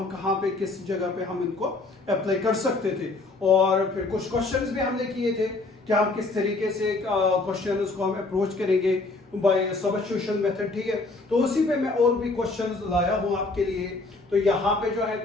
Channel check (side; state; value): right; quieter; 3.4 dB